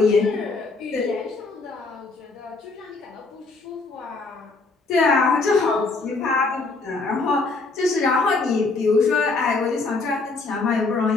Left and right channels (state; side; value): quieter; right; 3.8 dB